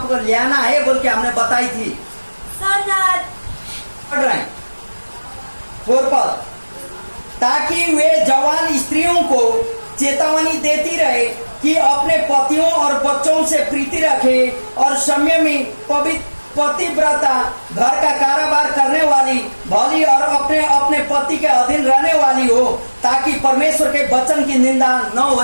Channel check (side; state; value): both; inverted; correlation -1.00